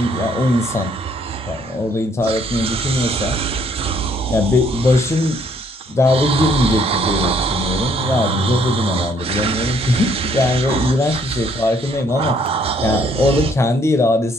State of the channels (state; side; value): normal; both; correlation 0.66